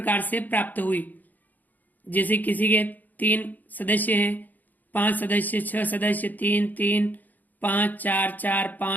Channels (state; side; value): late; right; 0.083 ms